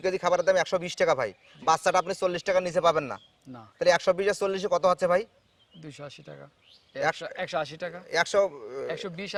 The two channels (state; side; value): identical; both; correlation 1.00